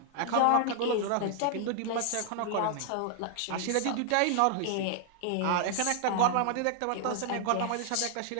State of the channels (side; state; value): both; different; correlation -0.01